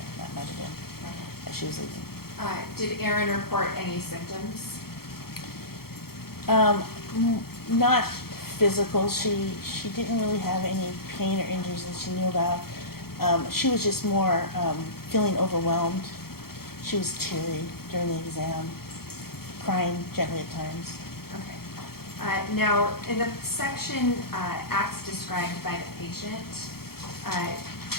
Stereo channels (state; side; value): late; right; 0.94 ms